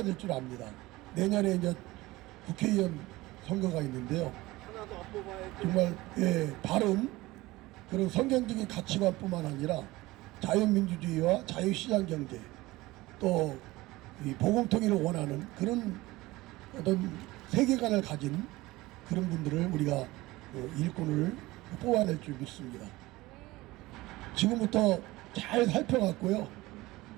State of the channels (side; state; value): left; quieter; 19.5 dB